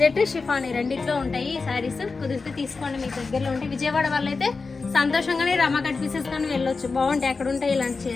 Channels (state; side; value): quieter; right; 4.3 dB